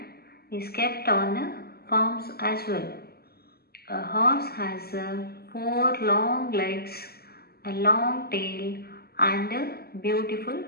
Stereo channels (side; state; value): right; late; 0.46 ms